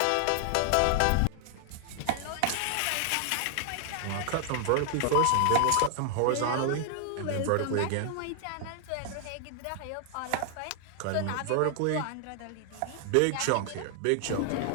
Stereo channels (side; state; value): both; different; correlation 0.00